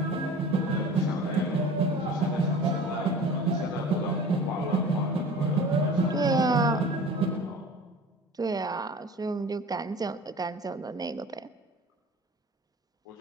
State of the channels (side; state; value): both; normal; correlation 0.40